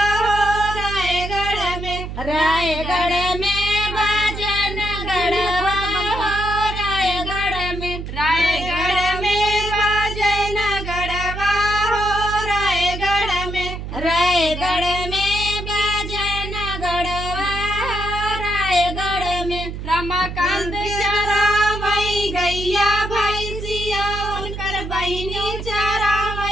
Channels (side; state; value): right; noise; hum, 7 dB below the sound